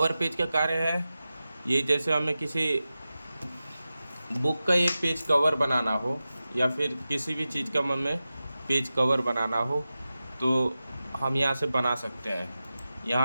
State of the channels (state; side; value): inverted; both; correlation -0.94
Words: पेज का कार्य है ये जैसे हमें किसी बुक का ये पेज कवर बनाना हो या फिर किसी भी चीज़ का हमें पेज कवर बनाना हो तो हम यहाँ से बना सकते हैं।